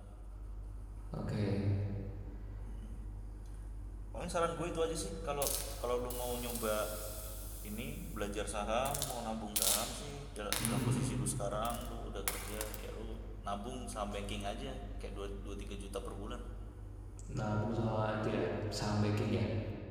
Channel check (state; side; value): identical; both; correlation 1.00